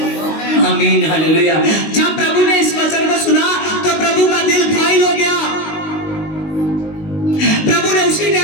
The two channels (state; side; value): late; right; 19 ms